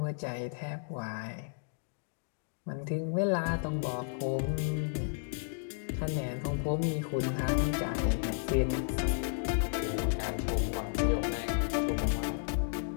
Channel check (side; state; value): right; silent; digital silence